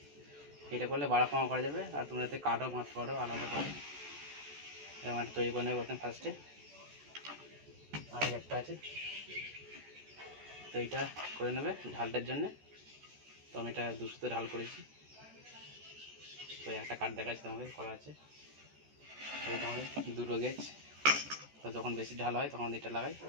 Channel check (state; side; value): late; left; 14 ms